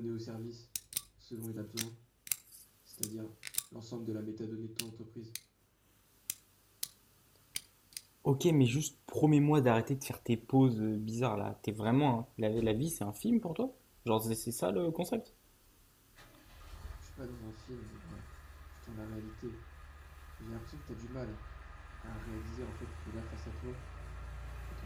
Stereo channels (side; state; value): both; identical; correlation 1.00